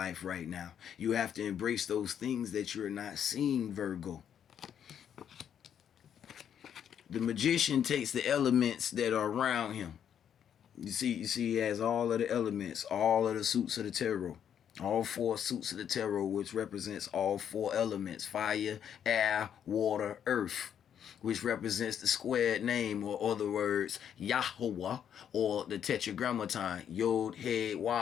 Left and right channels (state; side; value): quieter; right; 8.9 dB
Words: right now. You have to embrace those things that you're not seeing, Virgo. The magician takes the elements that are around him. You see he has all of the elements, all of the suits of the tarot. All 4 suits of the tarot, which represents all 4 elements: fire, air, water, earth, which represents the squared name, or other words, YHWH, or the tetragrammaton,